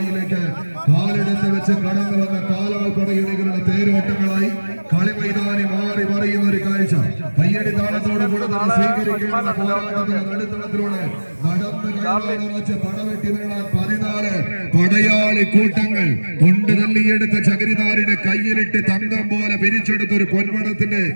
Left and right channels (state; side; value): inverted; both; correlation -1.00